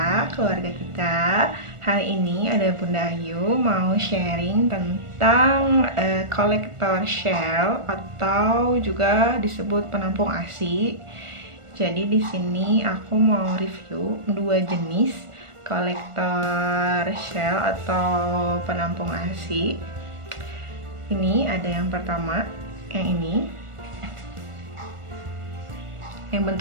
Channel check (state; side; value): late; left; 1.4 ms